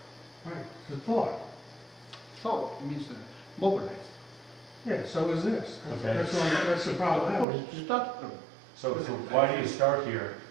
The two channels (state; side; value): drops out; left; at 7.5 s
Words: Right, it's a thought. Thought means mobilize. Yeah, so is this. Okay. That's the problem. I Of course, have. start from. So why do you start here